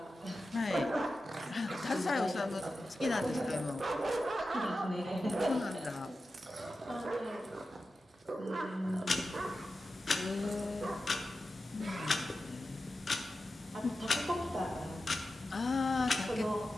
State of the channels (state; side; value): normal; both; correlation 0.92